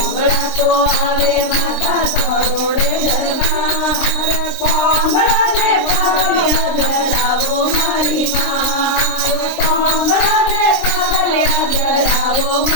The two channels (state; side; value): late; right; 23 ms